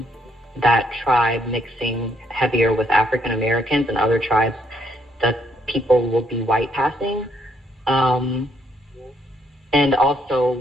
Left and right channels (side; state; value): both; normal; correlation 0.71